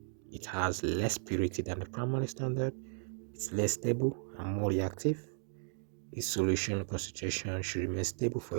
it has less purity than the primary standard, it's less stable and more reactive, its solution concentration should remain stable for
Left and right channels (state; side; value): silent; left; digital silence